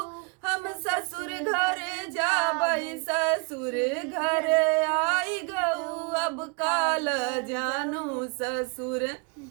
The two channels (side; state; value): left; quieter; 34.3 dB